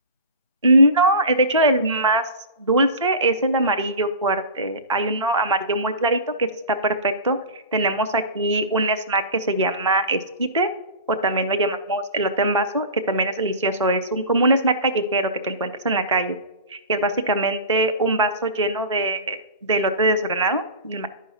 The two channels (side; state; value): both; inverted; correlation -0.32